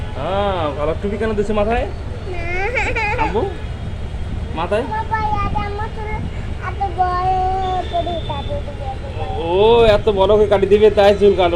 হ্যাঁ, ভালো টুপি কেন দিছো মাথায় আব্বু? মাথায় ও এত বড় করে কাটি দিবে তাই চুল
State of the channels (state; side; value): identical; both; correlation 1.00